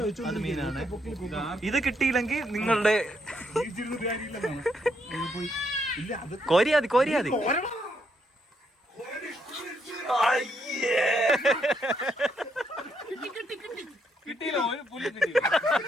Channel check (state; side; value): normal; both; correlation 0.76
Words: അത് മീനാണ്. ഇത് കിട്ടിയില്ലെങ്കിൽ നിങ്ങളുടെ കോരിയാതി.